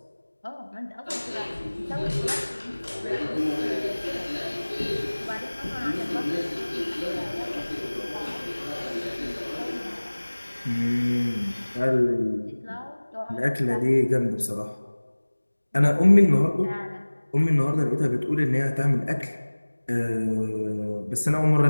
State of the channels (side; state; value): both; inverted; correlation -1.00